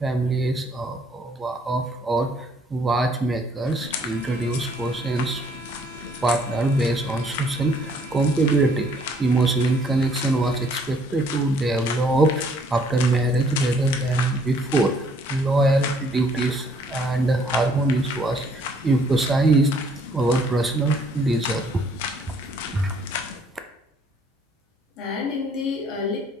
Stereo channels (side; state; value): both; normal; correlation 0.63